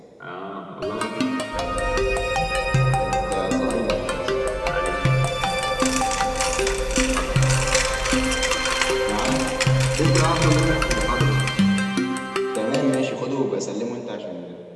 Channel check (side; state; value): both; identical; correlation 1.00